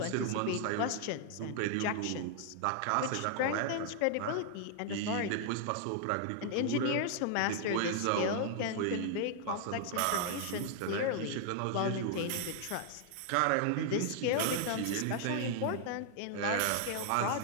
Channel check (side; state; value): both; different; correlation 0.00